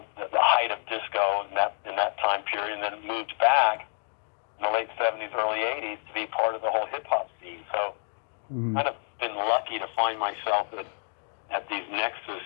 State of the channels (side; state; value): right; silent; digital silence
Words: height of disco in that time period, and then moved back in the late '70s, early '80s to be part of the whole hip-hop scene. So kind of been lucky to find myself at these nexus